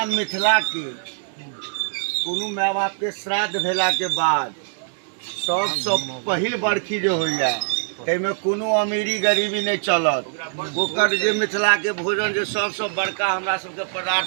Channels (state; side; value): silent; left; digital silence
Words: मिथिला के कोनो माय बाप के श्राद्ध भेला के बाद सबसे पहिल बरखी जो होइया तैमे कोनो अमीरी गरीबी नहीं चलत। ओकर जे मिथिला के भोजन जो सबसे बड़का हमरा सबके